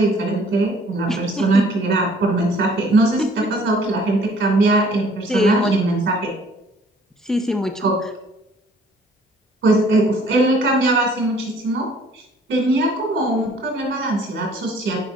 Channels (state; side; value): normal; both; correlation 0.57